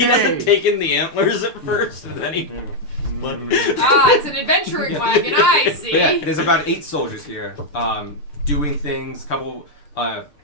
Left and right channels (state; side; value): late; right; 6.7 ms